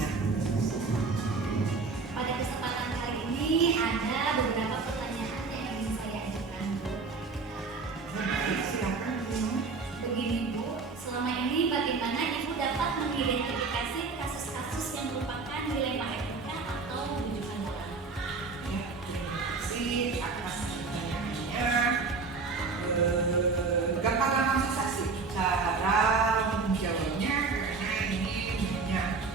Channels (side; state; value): left; quieter; 4.3 dB